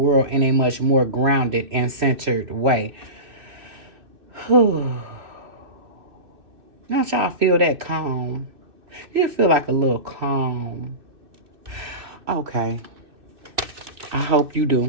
in a much more grounded and centered way. Don't y'all feel that calm? You feel like a little calm. Okay. I hope you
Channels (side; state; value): left; late; 2.6 ms